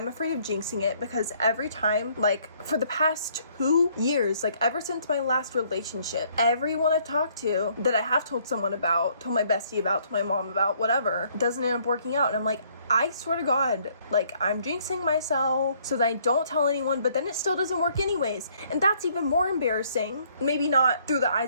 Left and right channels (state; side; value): inverted; both; correlation -0.65